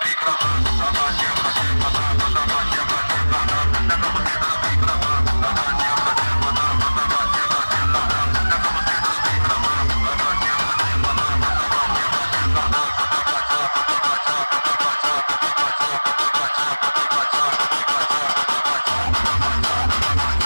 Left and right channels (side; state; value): both; inverted; correlation -1.00